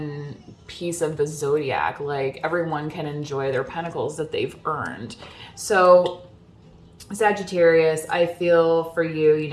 piece of the zodiac. Like, everyone can enjoy their pentacles that they've earned. So Sagittarius, I feel for you,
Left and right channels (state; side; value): identical; both; correlation 1.00